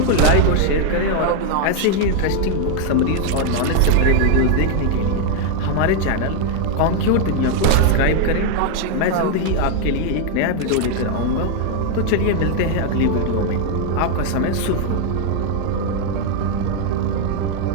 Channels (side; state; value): both; different; correlation 0.00